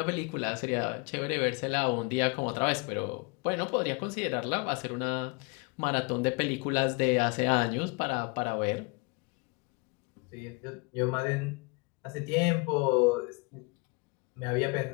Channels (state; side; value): quieter; right; 30.0 dB